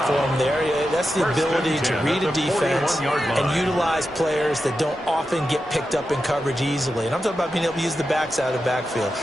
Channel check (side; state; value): both; normal; correlation 0.90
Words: for him there. That's the ability to read a defense and utilize players that don't often get picked up in coverage easily. And I'm talking about being able to use the backs out of the backfield.